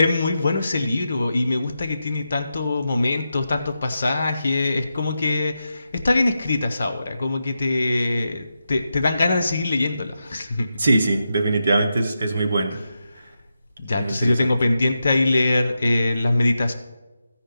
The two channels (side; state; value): both; inverted; correlation -0.88